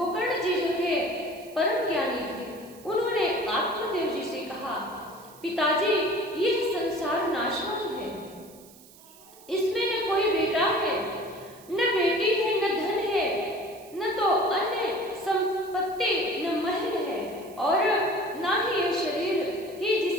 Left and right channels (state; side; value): noise; right; hiss, 23 dB below the sound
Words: जी जो थे परम ज्ञानी थे। उन्होंने आत्मदेव जी से कहा, पिताजी यह संसार नाशवान है, इसमें न कोई बेटा है, न बेटी है, न धन है, न तो अन्य संपत्ति, न महल है, और ना ही यह शरीर ही